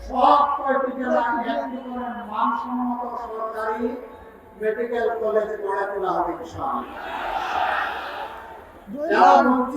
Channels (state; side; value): identical; both; correlation 1.00